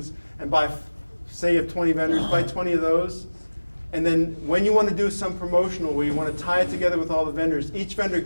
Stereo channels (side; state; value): both; inverted; correlation -1.00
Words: and buy, say you have 20 vendors, buy 20 of those. And then when you want to do some promotional where you want to tie it together with all the vendors, each vendor